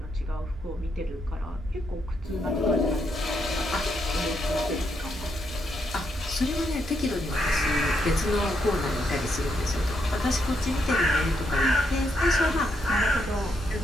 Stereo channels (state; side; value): normal; both; correlation 0.78